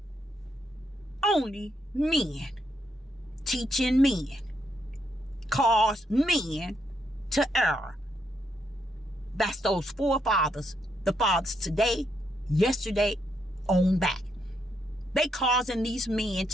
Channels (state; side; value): normal; both; correlation 0.77